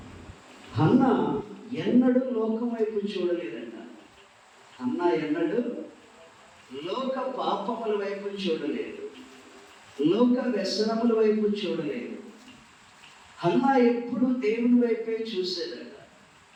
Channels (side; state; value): both; identical; correlation 1.00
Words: హన్నా ఎన్నడూ లోకం వైపు చూడలేదంట. హన్నా ఎన్నడూ లోక పాపముల వైపు చూడలేదు, లోక వ్యసనముల వైపు చూడలేదు. హన్నా ఎప్పుడు దేవుని వైపే చూసేదట,